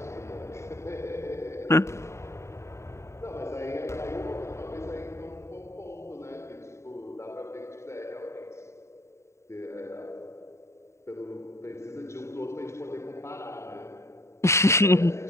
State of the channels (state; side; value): late; right; 0.14 ms